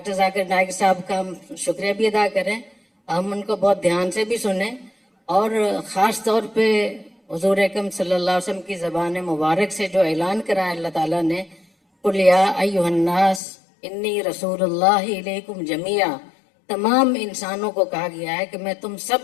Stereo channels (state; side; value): drops out; right; at 13.4 s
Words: ذاکر نائک صاحب کا ہم شکریہ بھی ادا کریں، ہم ان کو بہت دھیان سے بھی سنیں، اور خاص طور پہ حضور اکرم صلی اللہ علیہ وسلم کی زبان مبارک سے جو اعلان کرا ہے اللہ تعالیٰ نے، قُلْ يَا أَيُّهَا النَّاسِ إِنِّي رَسُولُ اللَّهِ إِلَيْكُمْ جَمِيعًا. تمام انسانوں کو کہا گیا ہے کہ میں تم